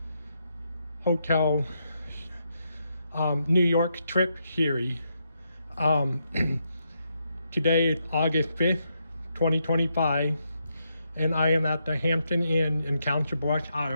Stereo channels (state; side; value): inverted; both; correlation -0.81